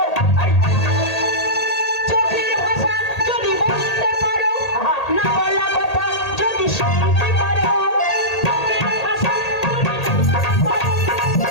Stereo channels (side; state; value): right; late; 1.8 ms